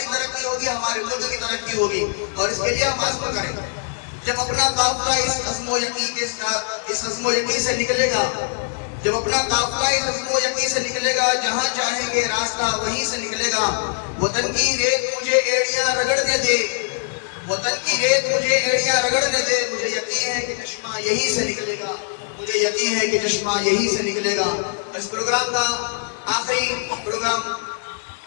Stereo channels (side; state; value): right; silent; digital silence